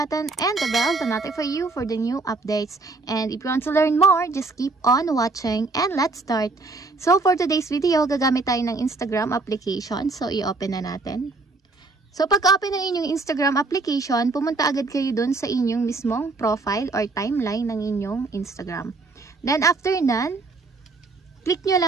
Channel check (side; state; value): left; quieter; 3.6 dB